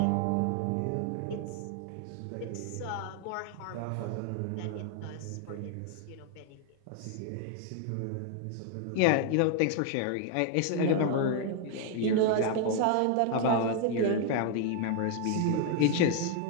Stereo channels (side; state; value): both; different; correlation 0.00